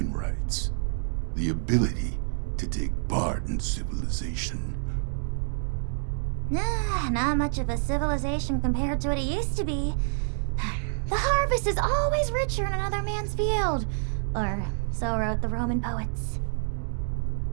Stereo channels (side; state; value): left; silent; digital silence